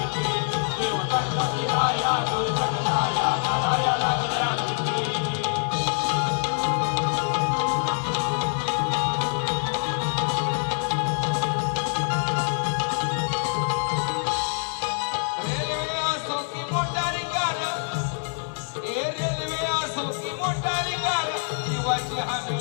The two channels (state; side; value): silent; right; 61 dB below the other